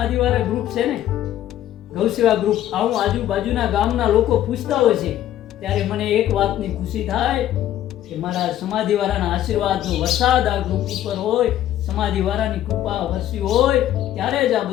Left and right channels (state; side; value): quieter; right; 12.3 dB